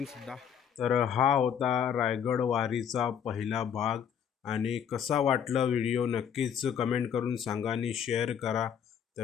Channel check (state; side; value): quieter; right; 8.3 dB